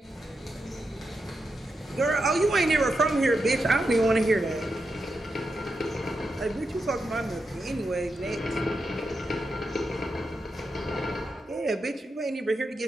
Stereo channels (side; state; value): both; normal; correlation 0.86